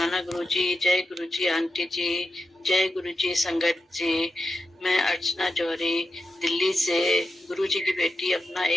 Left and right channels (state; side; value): normal; both; correlation 0.89